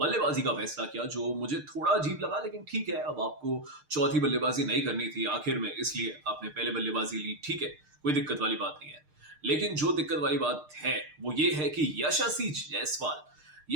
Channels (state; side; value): late; left; 6.6 ms